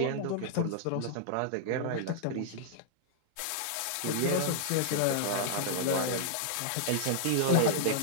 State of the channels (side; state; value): both; different; correlation -0.01